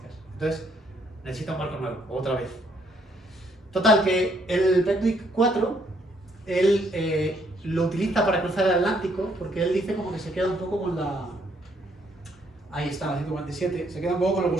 Entonces, necesita un barco nuevo, otra vez. Total, que el Penduic 4, él lo utiliza para cruzar el Atlántico, porque él dice como que se queda un poco con la... Ahí está, la 147, se queda un poco con los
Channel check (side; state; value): both; normal; correlation 0.70